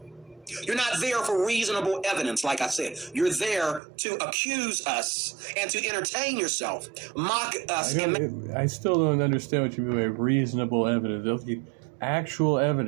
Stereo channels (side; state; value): left; drops out; at 3.8 s